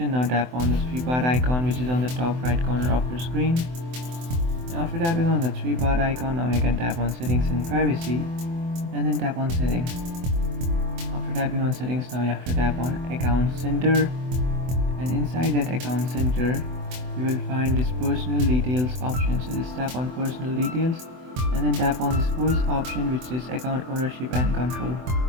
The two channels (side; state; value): left; late; 24 ms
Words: now tap on the three bar icon which is on the top right corner of your screen. After tapping on the three bar icon, now you can tap on settings and privacy and then tap on settings. After tapping on settings, now you have to tap on account center, and inside that account center you will find this personal details option. So just tap on personal details and then tap on this voice option which says account ownership and control.